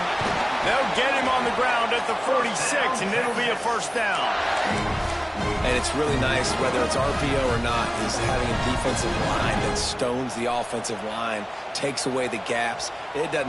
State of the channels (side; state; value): both; identical; correlation 1.00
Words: They'll get him on the ground at the 46, and it'll be a first down. And it's really nice, whether it's RPO or not, is having a defensive line that stones the offensive line, takes away the gaps. It